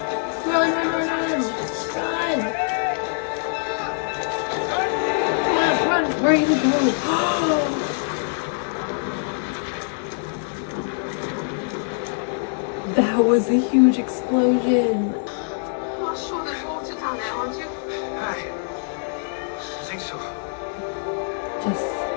Run, run, run, run! Run! Come on, run! Where are you gonna go? That was a huge explosion. You're sure there's water down there, aren't you? Aye. I think so. Just...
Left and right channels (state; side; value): silent; right; 63 dB below the other